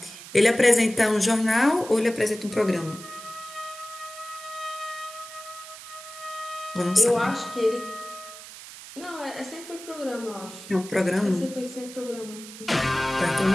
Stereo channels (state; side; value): noise; right; hiss, 15 dB below the sound